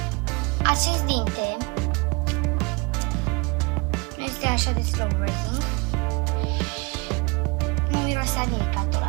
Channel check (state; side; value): quieter; left; 28.2 dB